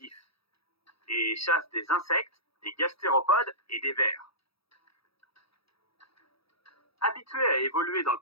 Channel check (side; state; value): right; late; 0.76 ms